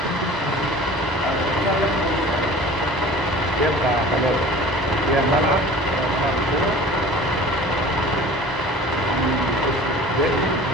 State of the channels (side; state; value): both; normal; correlation 0.44